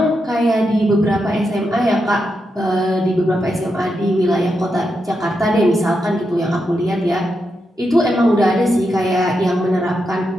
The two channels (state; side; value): normal; both; correlation 0.85